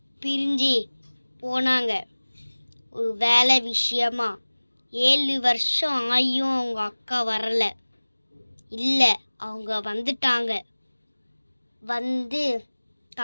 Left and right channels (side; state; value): both; inverted; correlation -1.00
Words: பிரிஞ்சு போனாங்க ஒரு வேலை விஷயமா. 7 வருஷம் ஆகியும் அவங்க அக்கா வரலை. இல்லை, அவங்க வந்துட்டாங்க.